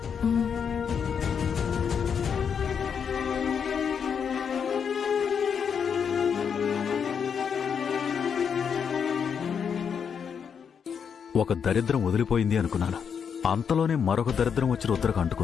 ఒక దరిద్రం వదిలిపోయింది అనుకున్నాను. అంతలోనే మరొక దరిద్రం వచ్చి రుద్రకు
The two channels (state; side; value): quieter; right; 7.0 dB